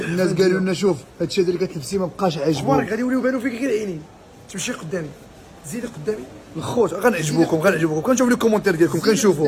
قالوا لنا شوف هادشي هذا اللي كتلبسي ما بقاش اخبارك عاجبوك. غادي يوليو يبانو فيك غير عينين. تمشي قدامي، زيدي قدامي. الخوت غنعجبوكم كنشوف لي الكومونتير ديالكم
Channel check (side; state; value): both; identical; correlation 1.00